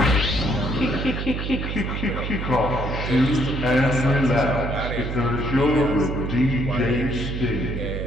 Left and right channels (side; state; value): right; noise; hum, 4 dB below the sound